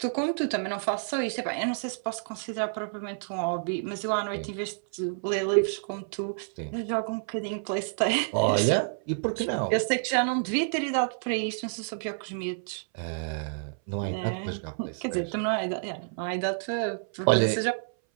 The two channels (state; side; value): silent; left; 59 dB below the other